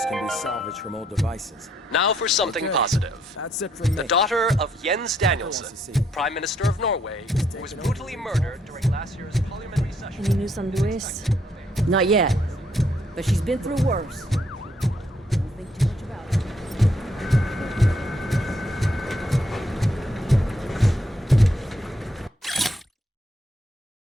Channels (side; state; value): both; normal; correlation 0.72